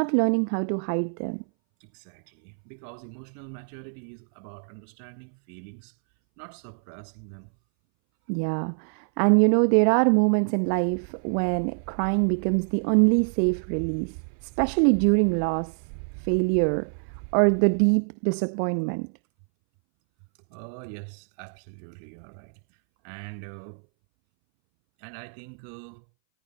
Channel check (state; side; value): silent; left; 61 dB below the other